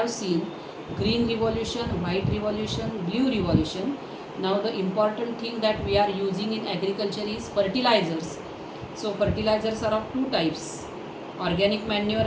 seen green revolution, white revolution, blue revolution. Now the important thing that we are using in agriculture is fertilizers. So fertilizers are of two types, organic manure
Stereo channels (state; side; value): identical; both; correlation 1.00